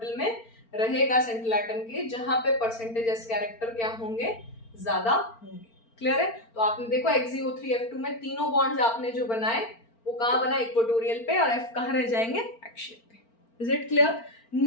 में रहेगा central atom के, जहां पे percentage s character क्या होंगे, ज्यादा होंगे। क्लियर है? तो आपने देखो XeO3 F2 में तीनों बॉन्ड्स आपने जो बनाए वो कहां बना, इक्वेटोरियल पे, और F कहां रह जाएंगे, एक्सियल पे। Is it clear?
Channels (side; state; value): right; late; 4.4 ms